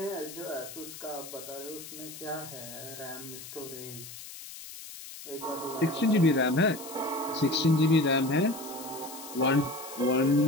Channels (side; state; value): left; noise; hiss, 13 dB below the sound